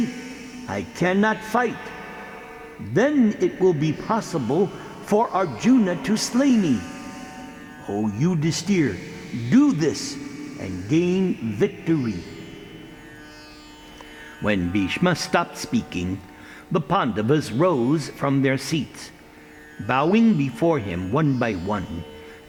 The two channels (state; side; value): identical; both; correlation 1.00